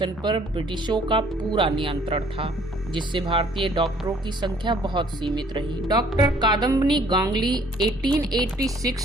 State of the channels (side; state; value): both; normal; correlation 0.59